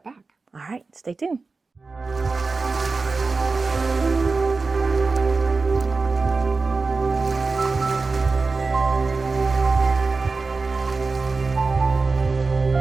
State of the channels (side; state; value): left; quieter; 4.0 dB